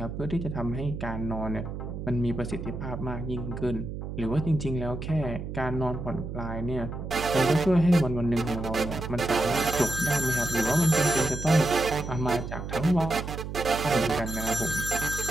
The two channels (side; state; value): right; noise; hum, 7 dB below the sound